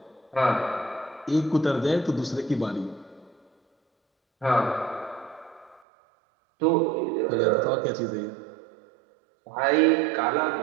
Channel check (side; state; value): left; drops out; at 5.8 s